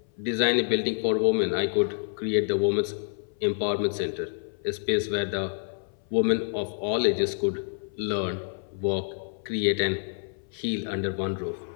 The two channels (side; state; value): right; silent; 57 dB below the other